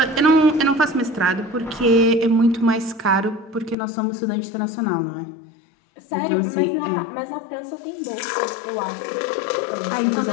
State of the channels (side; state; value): right; drops out; at 3.8 s